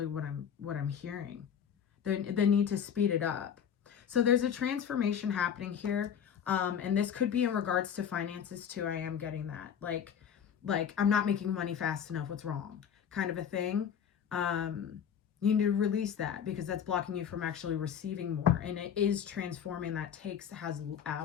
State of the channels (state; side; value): quieter; right; 8.2 dB